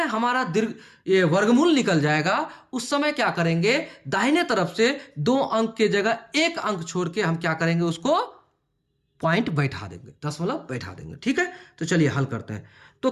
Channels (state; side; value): identical; both; correlation 1.00